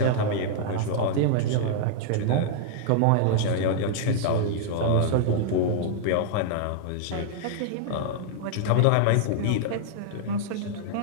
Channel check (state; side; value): different; both; correlation -0.01